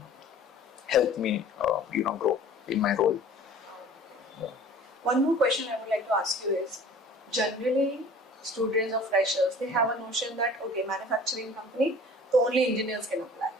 helped me grow in my role. One more question I would like to ask you is, generally students or freshers, they have a notion that, okay, manufacturing company, so only engineers can apply.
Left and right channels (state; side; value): normal; both; correlation 0.46